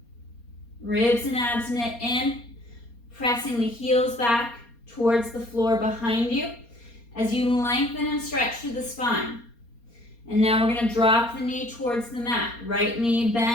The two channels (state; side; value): late; right; 4.3 ms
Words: ribs and abs knit in, pressing the heels back towards the floor behind you as you lengthen and stretch through the spine. And now we're going to drop the knee towards the mat. Right knee